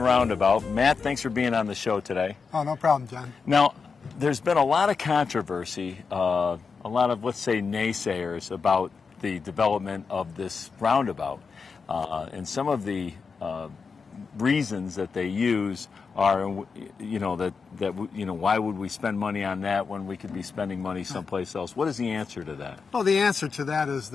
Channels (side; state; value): right; quieter; 5.2 dB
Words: Matt, thanks for being on the show today. Oh, no problem, John. Now, there's been a lot of controversy, a lot of, let's say, naysayers about the development of this roundabout. And some of the reasons that they use are, why would we spend money on that when we could be spending money someplace else? What is the answer to that? Well, the answer to that is